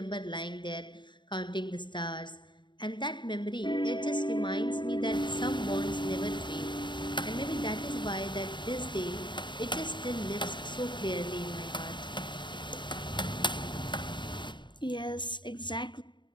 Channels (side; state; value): right; late; 0.23 ms